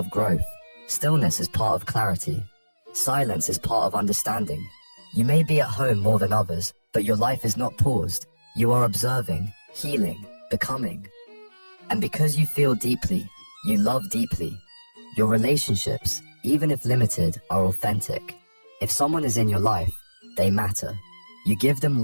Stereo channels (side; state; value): both; inverted; correlation -1.00